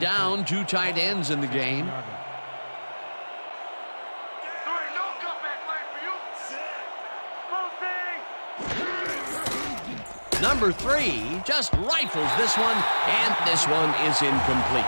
2 tight ends in the game. There ain't no comeback line for you! Closing! Number 3 just rifles this one, and this one is incomplete.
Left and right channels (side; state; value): both; inverted; correlation -1.00